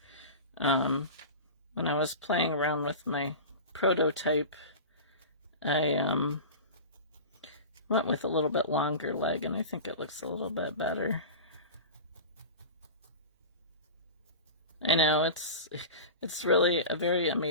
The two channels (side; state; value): both; inverted; correlation -0.30